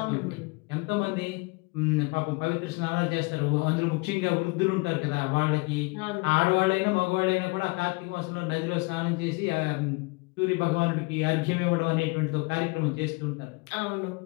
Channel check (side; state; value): right; quieter; 27.5 dB